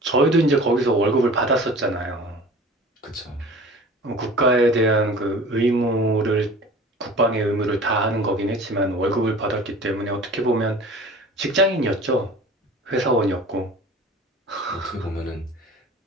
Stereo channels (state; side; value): normal; both; correlation 0.42